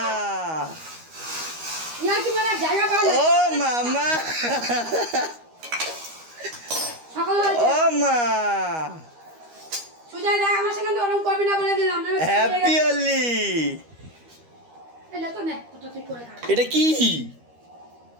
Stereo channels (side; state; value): left; late; 13 ms